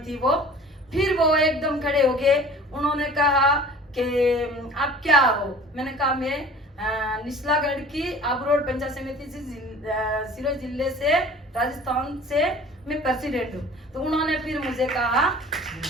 वो। फिर वो एकदम खड़े हो गए, उन्होंने कहा कि आप क्या हो। मैंने कहा मैं निचलागढ़ की आबरोड पंचायत समिति से सिरोही जिले से राजस्थान से मैं प्रेसिडेंट हूँ। तो उन्होंने फिर मुझे कहा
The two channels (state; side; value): normal; both; correlation 0.45